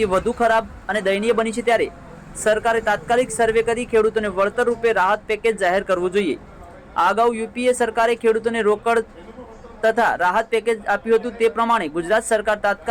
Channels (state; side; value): identical; both; correlation 1.00